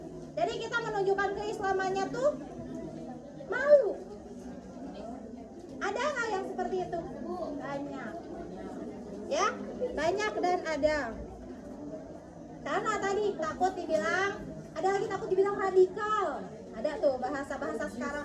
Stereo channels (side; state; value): both; identical; correlation 1.00